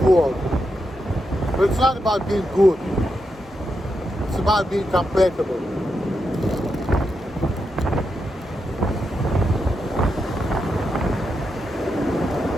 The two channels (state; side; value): normal; both; correlation 0.85